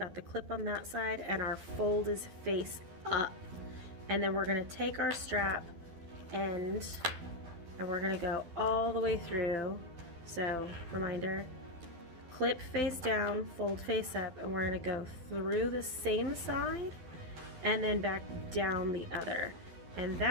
the clip on that side and our fold is face up. And then we're going to take our strap end and we're going to go all the way through. So reminder, clip face down, fold face up, and we're going to go through the same side and then back down the other. And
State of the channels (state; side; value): late; left; 12 ms